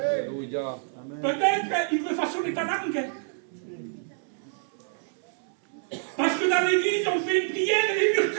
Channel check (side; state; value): left; silent; 60 dB below the other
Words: Peut-être il veut façonner ta langue. Parce que dans l'église, on fait une prière et les murs